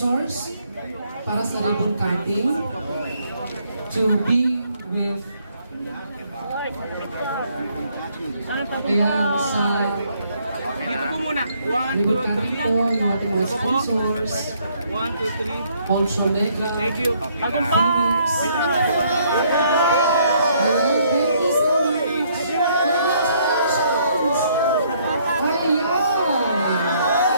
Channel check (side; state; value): both; inverted; correlation -0.68